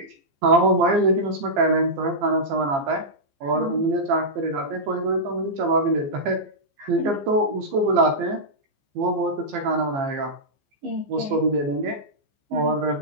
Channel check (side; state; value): left; late; 15 ms